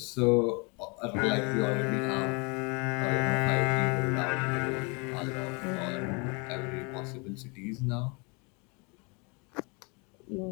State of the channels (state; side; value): quieter; right; 31.6 dB